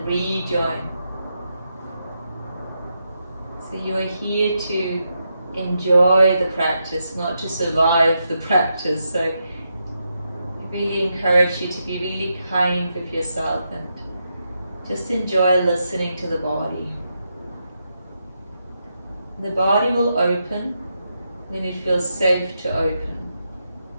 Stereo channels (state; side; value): inverted; both; correlation -0.84